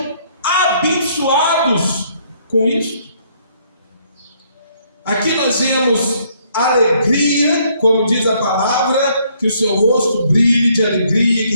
abençoados com isso. Aqui nós vemos alegria, como diz a palavra, que o seu rosto brilhe de alegria, que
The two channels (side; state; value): both; inverted; correlation -0.67